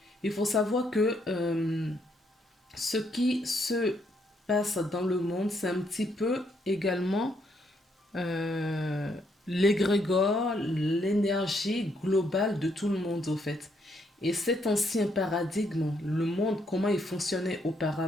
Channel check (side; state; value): both; normal; correlation 0.73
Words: Il faut savoir que ce qui se passe dans le monde, c'est un petit peu également l'égrégore, l'énergie globale de tout le monde, au fait. Et cet ancien paradigme, le monde, comment il fonctionnait